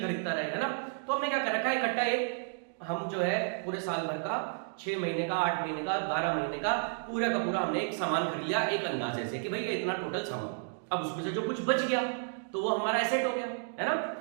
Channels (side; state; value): left; silent; digital silence